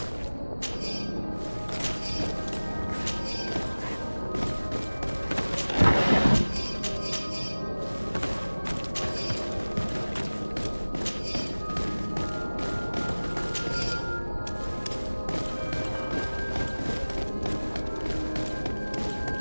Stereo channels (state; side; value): inverted; both; correlation -1.00